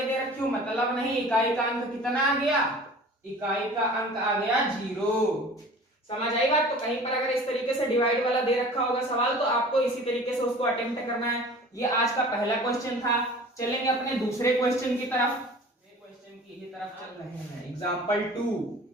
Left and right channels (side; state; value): both; normal; correlation 0.43